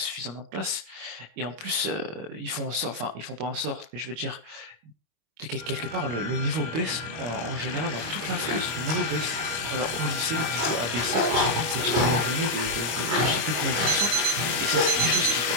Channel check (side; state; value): left; late; 25 ms